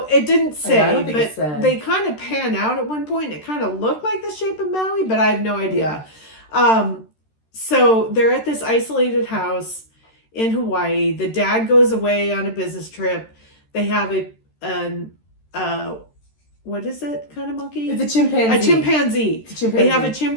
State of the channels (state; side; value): late; right; 13 ms